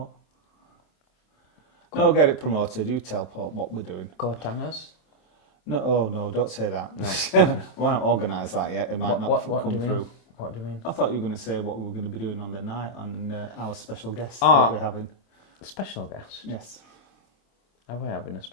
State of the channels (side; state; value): right; late; 27 ms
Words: No, get it promoted. You tell Paul what we're doing. Coat hangers? No, don't say that. No. We haven't organised that yet. It might not come through. What do you mean? I thought you were going to say what we were going to be doing on the night on our special guest that we're having. Special guest? Yes. Are we having a